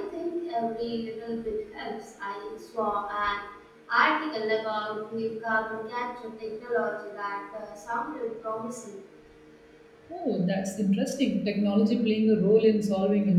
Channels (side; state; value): both; identical; correlation 1.00